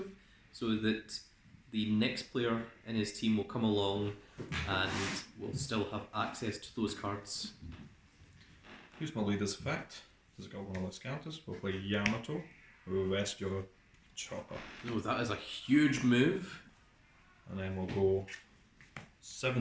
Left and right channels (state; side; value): identical; both; correlation 1.00